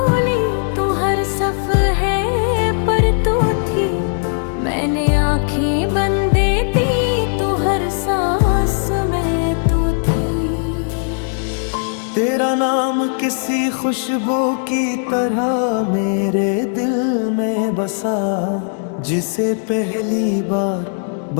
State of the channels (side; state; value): right; silent; digital silence